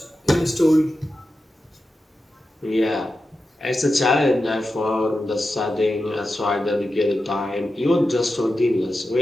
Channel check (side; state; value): both; normal; correlation 0.91